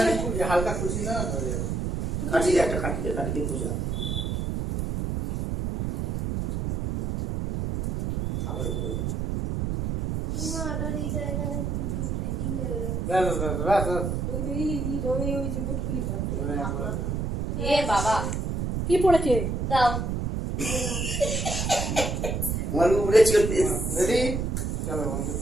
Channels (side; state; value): right; noise; rumble, 1 dB below the sound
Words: হালকা খুশি না কাটি দিয়ে একটা কাটি দিয়ে খুঁজা খাবার কই মাটার এই জায়গায় দেখি ওই যে বুটকুলিটা এ বাবা কি পড়েছে? দাও আমার উড়েছে রেডি চলো বন্ধু